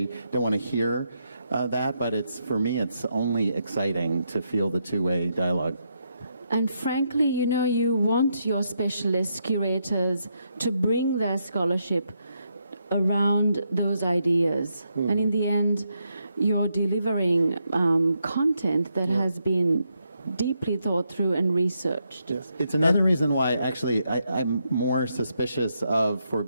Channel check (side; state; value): both; inverted; correlation -0.80